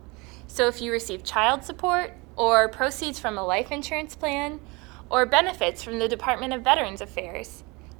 So if you receive child support, or proceeds from a life insurance plan, or benefits from the Department of Veterans Affairs,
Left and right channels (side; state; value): left; quieter; 26.3 dB